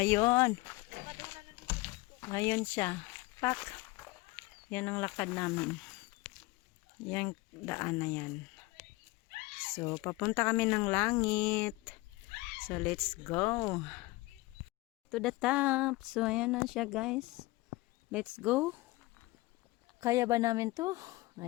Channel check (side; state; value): right; quieter; 21.4 dB